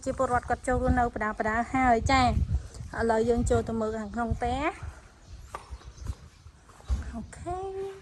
ជាពលរដ្ឋគាត់ចូលរស់នៅបដាហើយចាឥឡូវយើងចូលទៅមើលខាងក្នុងផ្ទះអូខេ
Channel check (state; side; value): identical; both; correlation 1.00